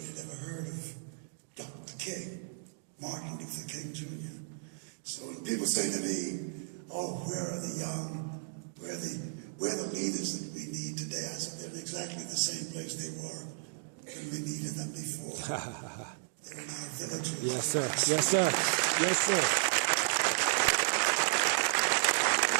had ever heard of Dr. King, Martin Luther King Jr. So when people say to me, "Oh, where are the young? Where are the leaders that we need today?" I said, they're in exactly the same place they were when we needed them before. They're in our villages. Yes, sir. Yes, sir. Yes, sir.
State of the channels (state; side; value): silent; left; digital silence